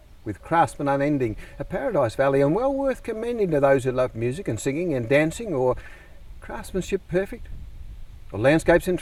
with craftsmen unending, a paradise valley and well worth commending to those who love music and singing and dancing, or craftsmanship perfect, or landscapes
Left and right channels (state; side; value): identical; both; correlation 1.00